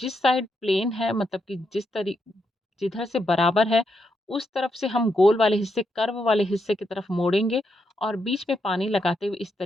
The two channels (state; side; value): normal; both; correlation 0.81